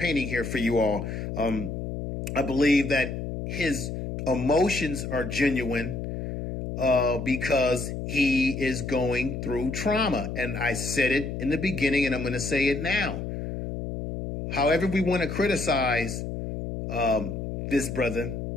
here for you all. I believe that his emotions are genuine because he is going through trauma. And I said it in the beginning, and I'm going to say it now. However we want to criticize this brother,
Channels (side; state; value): left; noise; hum, 5 dB below the sound